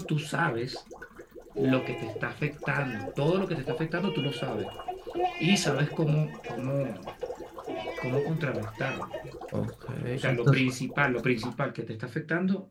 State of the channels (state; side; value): identical; both; correlation 1.00